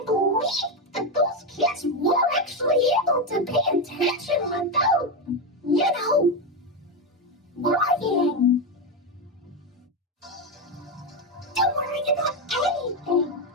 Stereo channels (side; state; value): both; normal; correlation 0.10